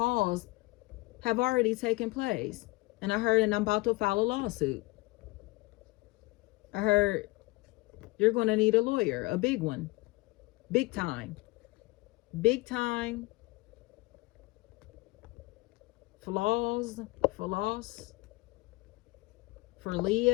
have already taken place. And I heard, and I'm about to file a lawsuit. I heard you're going to need a lawyer, a big one, big time, flaws, for loss. For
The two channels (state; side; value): quieter; right; 23.0 dB